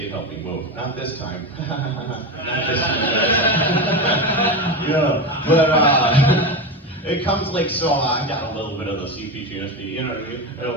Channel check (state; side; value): normal; both; correlation 0.19